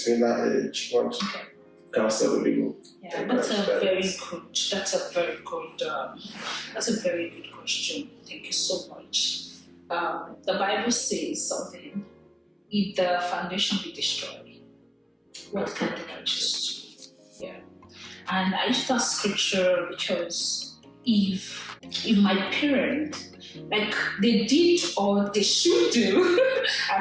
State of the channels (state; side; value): identical; both; correlation 1.00